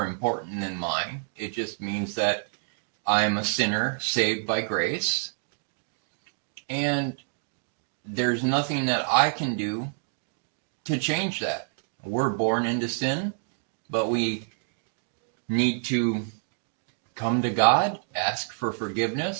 important than mine. It just means that I'm a sinner saved by grace. And there's nothing that I can do to change that. We're born into sin, but we need to come to God, ask for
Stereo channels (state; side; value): silent; left; digital silence